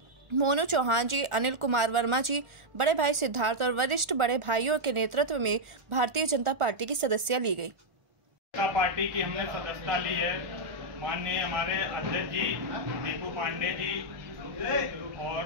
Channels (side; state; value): left; late; 1.4 ms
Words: चौहान जी, अनिल कुमार वर्मा जी, बड़े भाई सिद्धार्थ और वरिष्ठ बड़े भाइयों के नेतृत्व में भारतीय जनता पार्टी की सदस्यता ली गई। पार्टी की हमने सदस्यता ली है। माननीय हमारे अध्यक्ष जी दीपू पांडे जी और